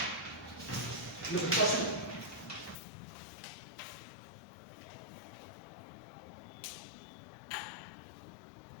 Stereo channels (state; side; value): drops out; right; at 2.8 s